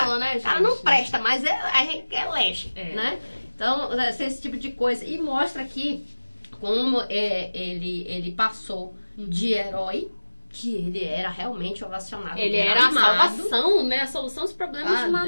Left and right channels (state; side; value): inverted; both; correlation -1.00